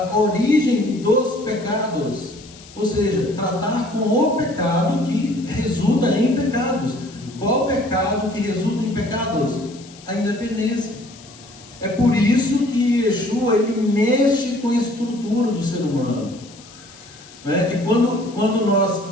origem dos pecados, ou seja, tratar com o pecado que resulta em pecados. Qual pecado que resulta em pecados? A independência. É por isso que Yeshua ele mexe com a estrutura do ser humano. Né? E quando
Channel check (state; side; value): noise; left; hiss, 21 dB below the sound